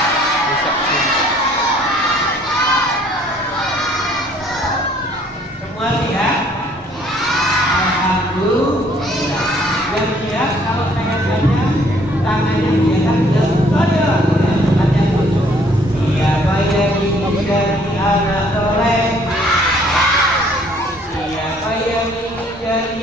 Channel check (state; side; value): normal; both; correlation 0.61